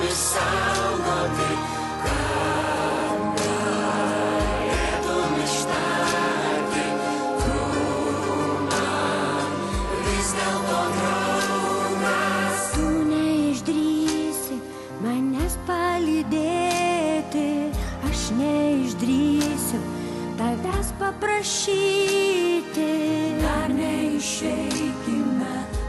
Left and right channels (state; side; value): identical; both; correlation 1.00